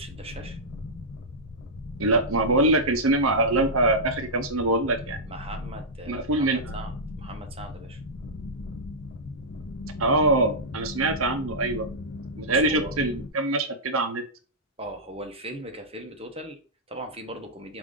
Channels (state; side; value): normal; both; correlation -0.10